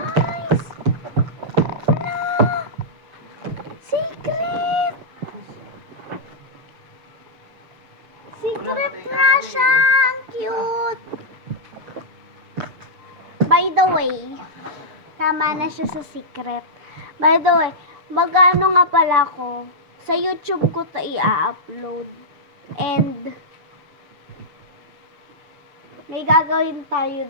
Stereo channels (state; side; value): late; left; 7.0 ms